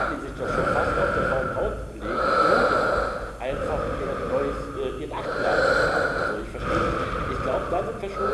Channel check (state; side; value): identical; both; correlation 1.00